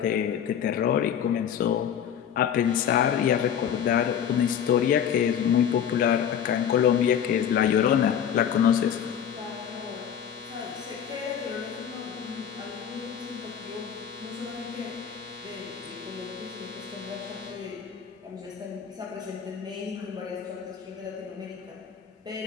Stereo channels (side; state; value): right; quieter; 8.7 dB